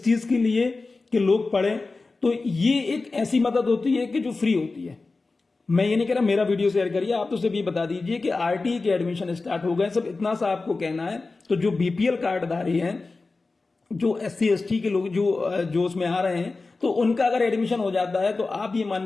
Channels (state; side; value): quieter; right; 3.7 dB